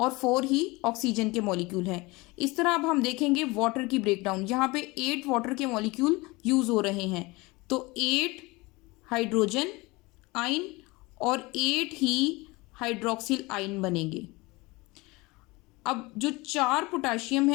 4 ही ऑक्सीजन के मॉलिक्यूल हैं। इस तरह अब हम देखेंगे वाटर की ब्रेकडाउन। यहाँ पे 8 वाटर के मॉलिक्यूल यूज हो रहे हैं तो 8 हाइड्रोजन आयन और 8 ही हाइड्रोक्सिल आयन बनेंगे। अब जो 4 पोटाशियम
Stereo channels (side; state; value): right; quieter; 23.5 dB